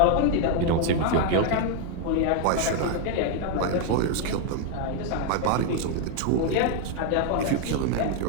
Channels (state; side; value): different; both; correlation 0.00